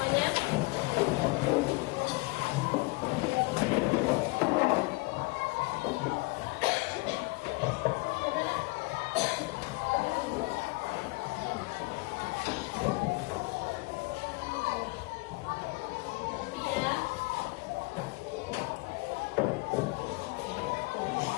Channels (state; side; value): quieter; right; 25.6 dB